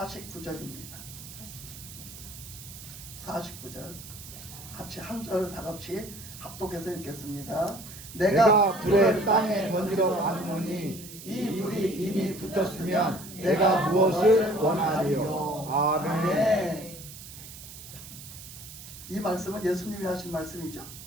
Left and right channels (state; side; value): noise; right; hiss, 14 dB below the sound